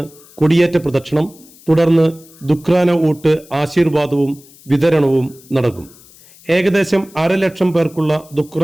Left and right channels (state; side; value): noise; left; hiss, 25 dB below the sound